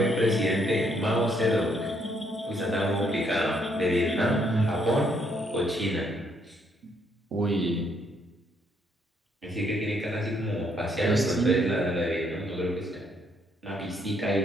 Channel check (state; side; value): normal; both; correlation 0.71